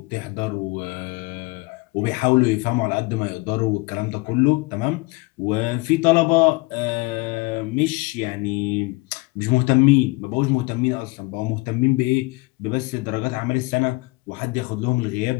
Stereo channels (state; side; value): quieter; right; 24.6 dB